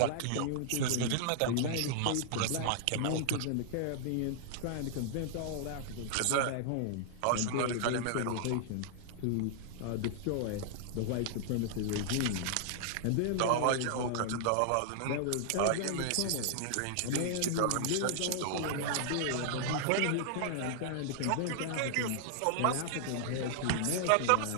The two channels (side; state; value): both; different; correlation -0.01